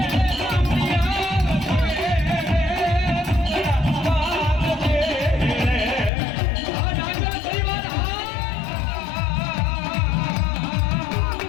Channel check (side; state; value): right; drops out; at 6.1 s